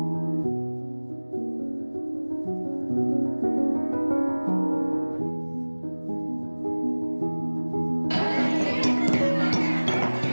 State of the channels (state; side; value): inverted; both; correlation -1.00